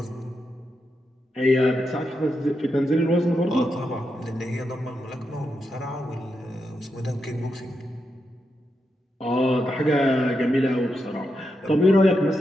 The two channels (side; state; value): both; normal; correlation 0.85